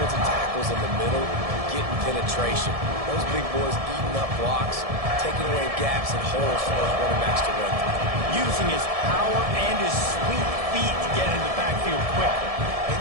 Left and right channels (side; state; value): left; late; 1.7 ms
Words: tackles in the middle, getting penetration. Those big boys eating up blocks, taking away gaps and holes for those running backs to run through. Using his power and his sweet feet to get in the backfield quickly. And